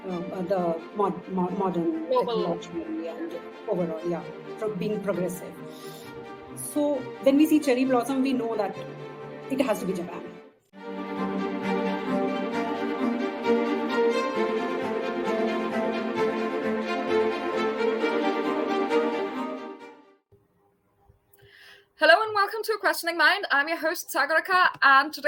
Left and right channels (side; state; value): both; identical; correlation 1.00